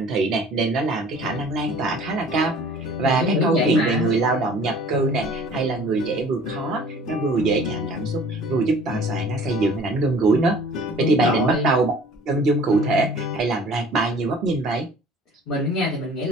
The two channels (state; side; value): normal; both; correlation 0.49